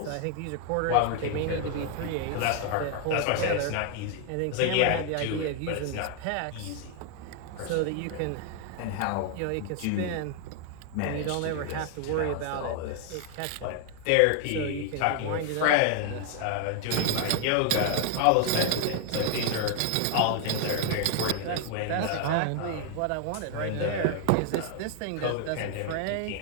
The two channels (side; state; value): both; different; correlation 0.00